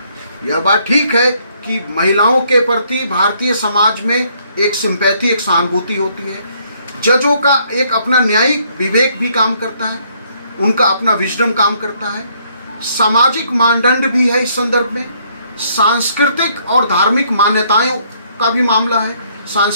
यह बात ठीक है कि महिलाओं के प्रति भारतीय समाज में एक सिंपैथी, एक सहानुभूति होती है। जजों का एक अपना न्यायिक विवेक भी काम करता है, उनका अपना विजडम काम करता है। सामाजिक मानदंड भी है इस संदर्भ में, सांस्कृतिक और धार्मिक मान्यताओं का भी मामला है।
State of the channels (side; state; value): both; inverted; correlation -0.67